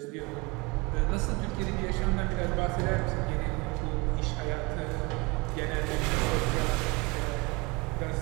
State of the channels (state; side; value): quieter; left; 26.3 dB